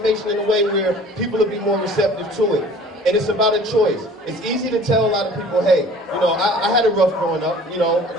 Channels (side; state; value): both; normal; correlation 0.48